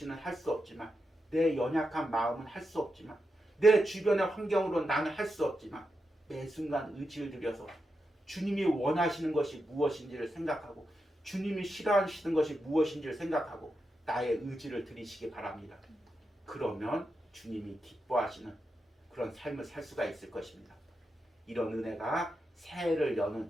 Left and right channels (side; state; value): both; normal; correlation 0.87